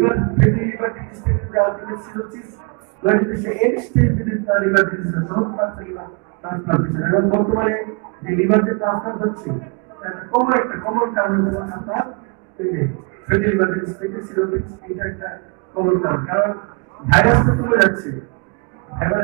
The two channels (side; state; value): left; quieter; 33.9 dB